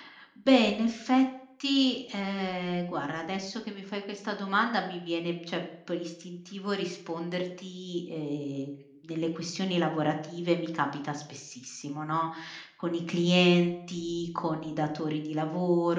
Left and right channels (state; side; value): identical; both; correlation 1.00